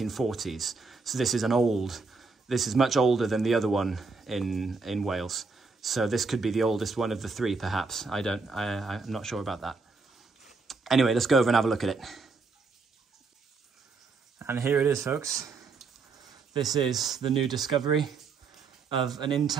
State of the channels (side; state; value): left; quieter; 4.3 dB